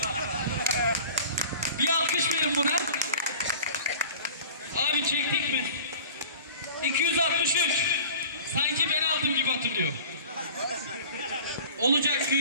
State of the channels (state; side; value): inverted; both; correlation -0.42